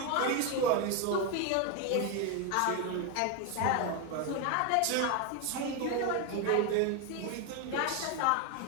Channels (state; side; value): different; both; correlation 0.02